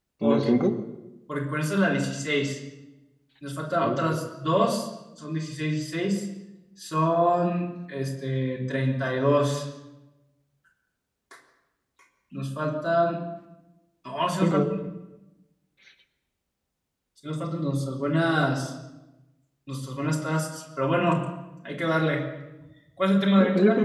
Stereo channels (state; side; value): identical; both; correlation 1.00